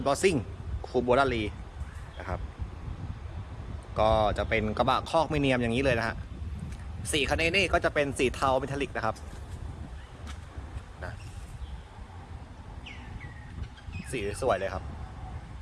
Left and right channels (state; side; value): identical; both; correlation 1.00